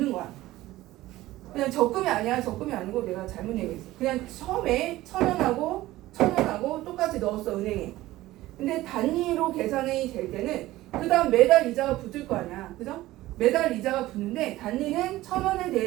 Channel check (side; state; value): left; quieter; 16.7 dB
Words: 거야. 그냥 적금이 아니야. 적금이 아니고 내가 잘못 얘기했어. 그냥 처음에 1,000원하고 똑같이 넣었어 은행에. 근데 단위로 계산이 될 때는 그 다음 매달 이자가 붙을 거 아니야. 그죠? 매달 이자가 붙는데 단리는 1,000원에